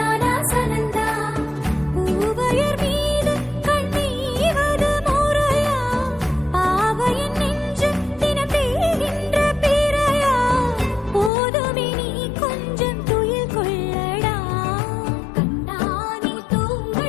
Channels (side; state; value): right; drops out; at 11.3 s